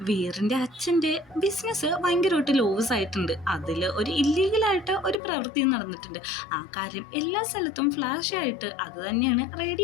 വീറിന്റെ അച്ഛന്റെ ബിസിനസ് ഭയങ്കരമായിട്ട് ലോസ് ആയിട്ടുണ്ട്. അതിൽ ഒരു ഇല്ലീഗലായിട്ട് ഒരു പ്രവൃത്തി നടന്നിട്ടുണ്ട്. ആ കാര്യം എല്ലാ സ്ഥലത്തും ഫ്ലാഷ് ആയിട്ട് അത് തന്നെയാണ്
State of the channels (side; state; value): right; drops out; at 5.2 s